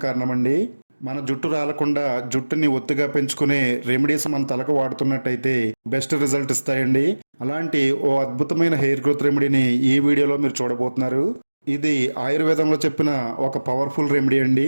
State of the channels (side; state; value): both; inverted; correlation -1.00